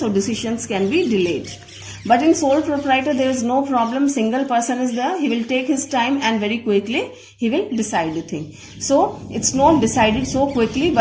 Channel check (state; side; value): identical; both; correlation 1.00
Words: So decisions can be delayed. But in sole proprietor, there is no problem. Single person is there. He will take his time and very quickly he will decide the thing. So it's not decided so quickly,